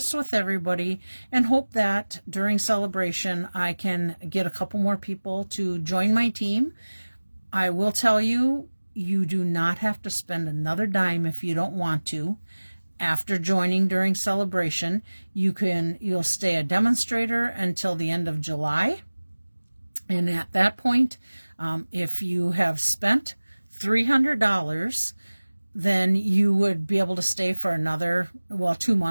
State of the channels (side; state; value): both; inverted; correlation -1.00